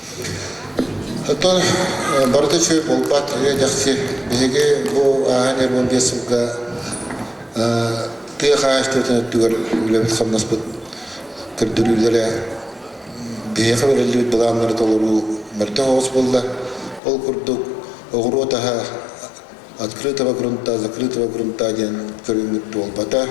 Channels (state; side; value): drops out; right; at 17.0 s